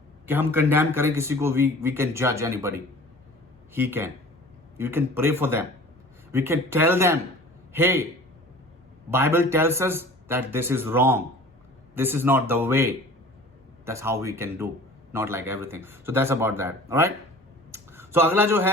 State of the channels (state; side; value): normal; both; correlation 0.44